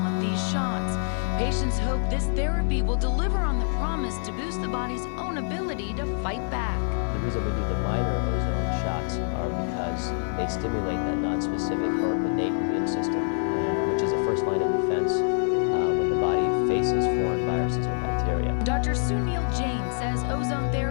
these shots. Patients hope this therapy will deliver on the promise to boost the body's own ability to fight back. The reason we do the minor ozone shots are because they stimulate that non-specific or innate immune system, which is the first line of defense when the body faces foreign viruses or bacteria. Dr. Sunil Jain says ozone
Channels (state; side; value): silent; right; digital silence